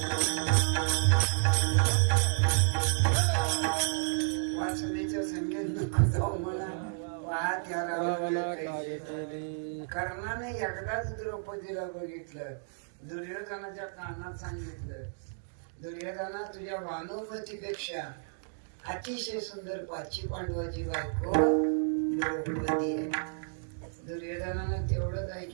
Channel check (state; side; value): silent; left; digital silence